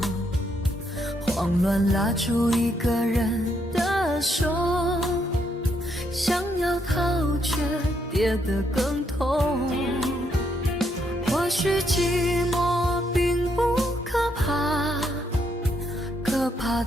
慌乱拉住一个人的手，想要逃却跌得更痛。或许寂寞并不可怕，可怕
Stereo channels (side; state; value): both; normal; correlation 0.75